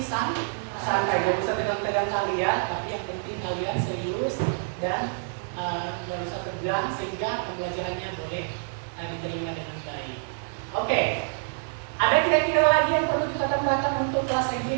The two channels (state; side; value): silent; left; digital silence